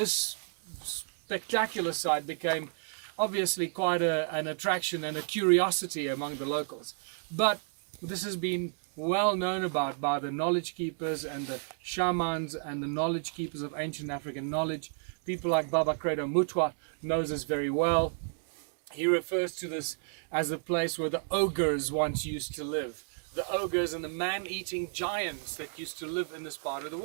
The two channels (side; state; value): left; silent; 57 dB below the other